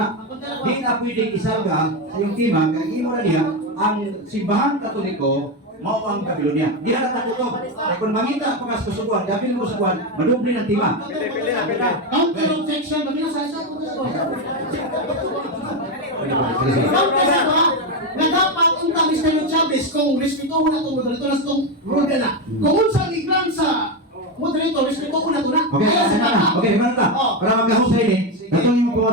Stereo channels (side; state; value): both; normal; correlation 0.10